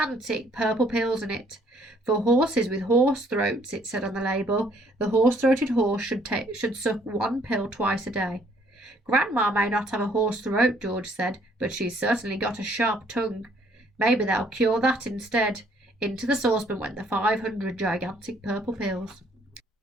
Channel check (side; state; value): both; normal; correlation 0.64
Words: purple pills in it. "For horses with horse throats," it said on the label. "The horse-throated horse should suck 1 pill twice a day." "Grandma may not have a horse throat," George said, "but she's certainly got a sharp tongue. Maybe they'll cure that instead." Into the saucepan went the 500 gigantic purple pills.